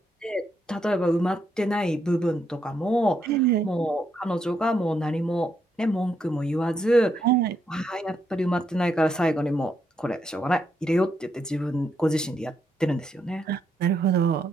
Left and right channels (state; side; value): normal; both; correlation 0.78